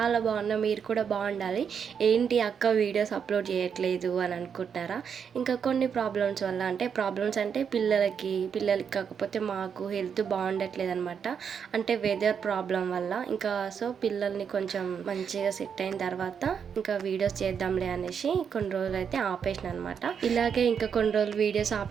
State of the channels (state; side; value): quieter; left; 7.1 dB